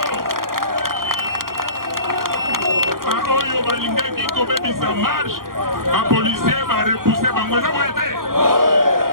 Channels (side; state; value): left; late; 0.92 ms